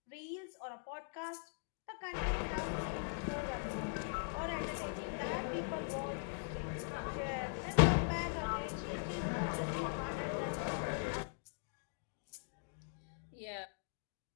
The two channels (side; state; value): right; silent; digital silence